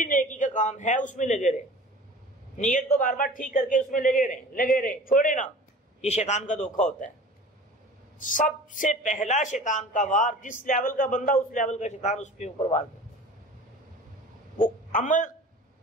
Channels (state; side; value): normal; both; correlation 0.41